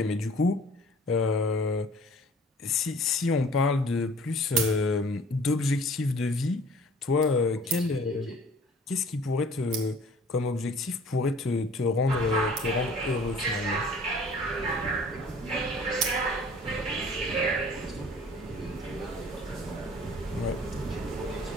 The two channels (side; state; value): both; normal; correlation 0.50